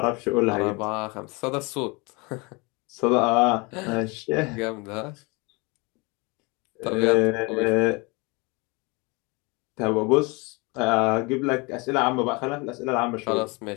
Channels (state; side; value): quieter; right; 27.6 dB